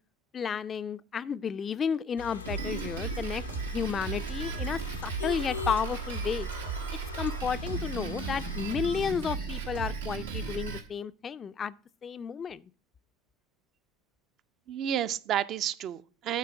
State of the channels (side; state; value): both; normal; correlation 0.51